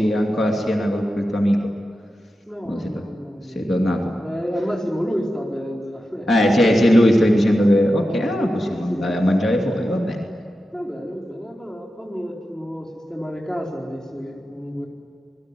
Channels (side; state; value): both; normal; correlation 0.91